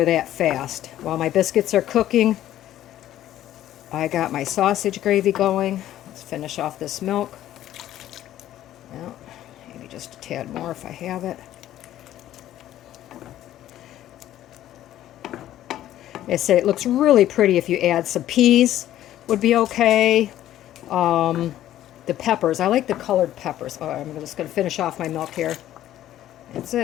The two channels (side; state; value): right; quieter; 12.8 dB